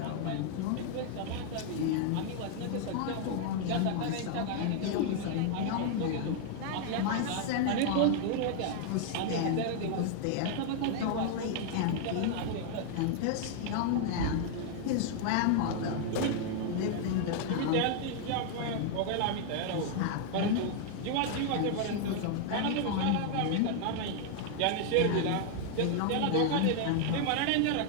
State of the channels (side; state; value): both; different; correlation 0.00